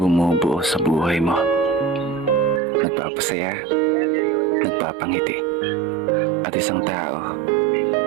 sa buhay mo. Nagpapasaya, nagpapangiti. At isang tao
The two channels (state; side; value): drops out; left; at 2.6 s